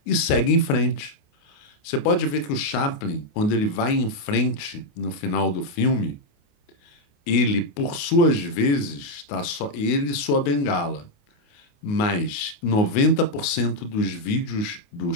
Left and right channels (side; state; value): right; late; 28 ms